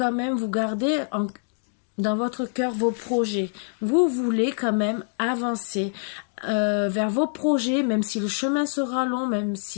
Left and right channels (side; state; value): right; silent; digital silence